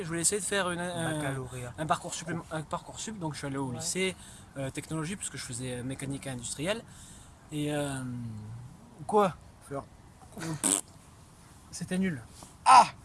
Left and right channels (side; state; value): both; identical; correlation 1.00